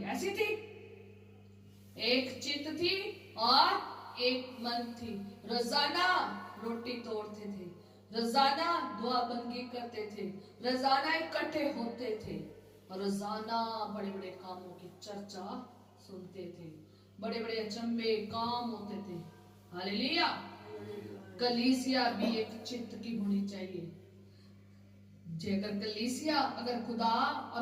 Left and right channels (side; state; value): both; identical; correlation 1.00